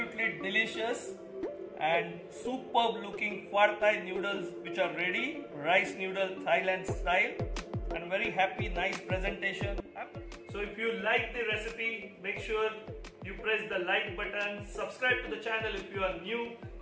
delicious and superb looking pad thai noodles which are ready, rice noodle Thailand style, and very happy, nice presentation. So if you like the recipe, make sure you press the like button, subscribe to the channel if you are new,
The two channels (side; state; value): both; identical; correlation 1.00